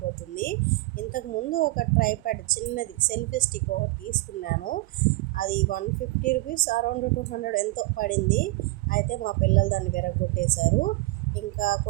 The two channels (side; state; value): left; quieter; 21.1 dB